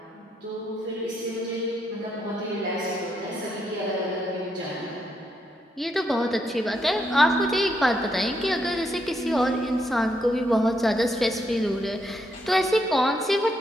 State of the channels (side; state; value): both; normal; correlation 0.78